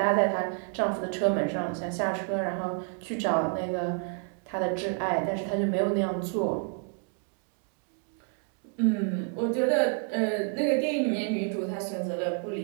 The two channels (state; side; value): quieter; left; 38.5 dB